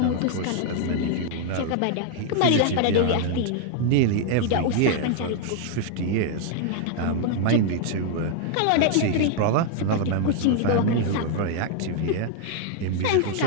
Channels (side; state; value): both; different; correlation 0.00